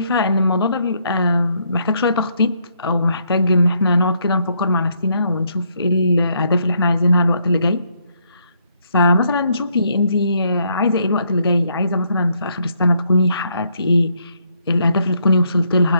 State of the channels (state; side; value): inverted; both; correlation -0.73